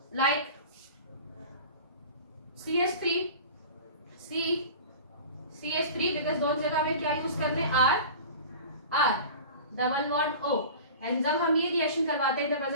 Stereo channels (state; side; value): inverted; both; correlation -0.37